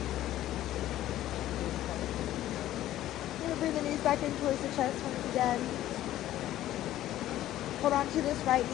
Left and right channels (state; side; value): quieter; right; 13.7 dB